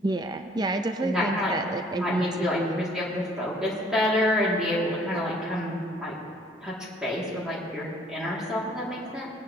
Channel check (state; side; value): normal; both; correlation 0.58